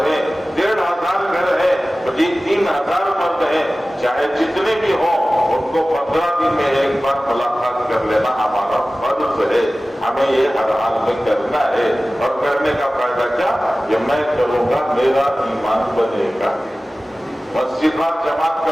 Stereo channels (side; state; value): both; normal; correlation 0.97